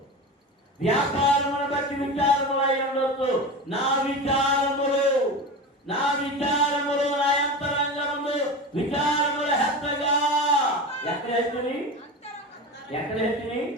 వ్యాపారమును బట్టి విచారములు అయి ఉండొచ్చు. నా విచారములు, నా విచారములు, నా అంతరంగములు విచారముల హెచ్చగా. ఎక్కడ హెచ్చని? ఎక్కడ హెచ్చని?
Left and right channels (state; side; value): normal; both; correlation 0.27